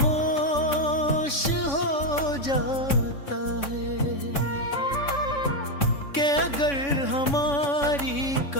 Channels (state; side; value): late; right; 3.6 ms